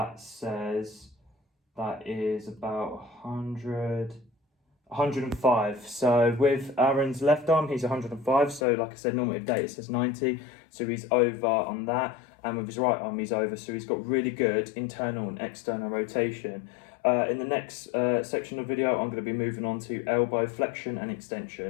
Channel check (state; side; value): drops out; right; at 8.6 s